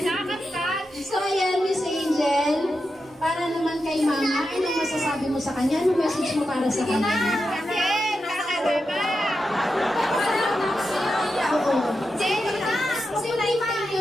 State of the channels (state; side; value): normal; both; correlation 0.88